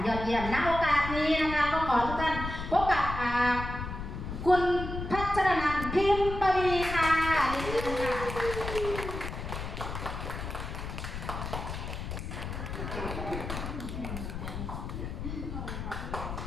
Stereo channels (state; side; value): noise; left; rumble, 6 dB below the sound